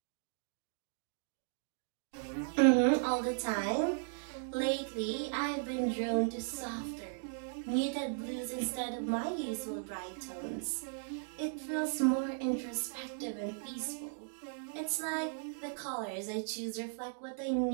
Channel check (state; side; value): silent; left; digital silence